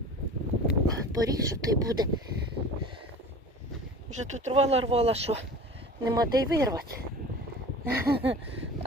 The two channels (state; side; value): normal; both; correlation 0.39